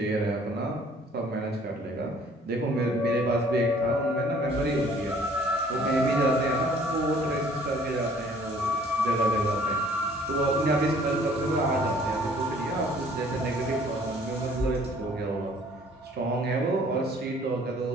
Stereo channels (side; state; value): both; normal; correlation 0.56